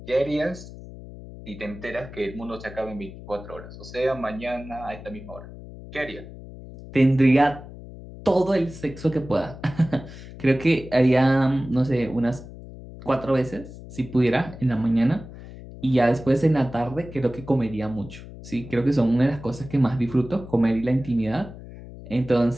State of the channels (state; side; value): noise; left; hum, 15 dB below the sound